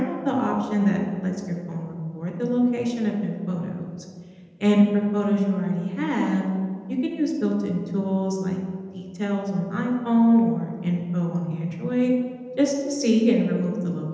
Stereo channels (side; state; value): both; identical; correlation 1.00